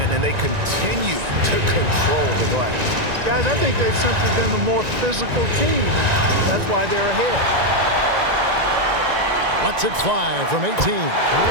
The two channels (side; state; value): left; late; 1.9 ms